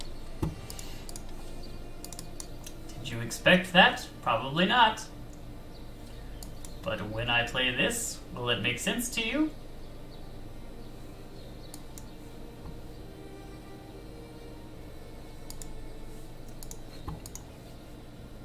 that. Did you expect that? Probably not. But when I play this, will it make sense to you?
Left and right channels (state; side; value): identical; both; correlation 1.00